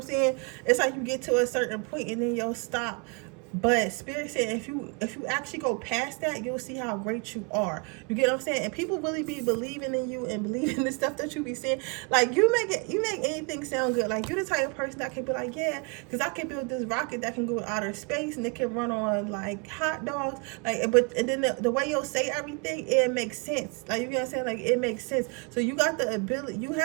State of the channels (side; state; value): left; quieter; 33.6 dB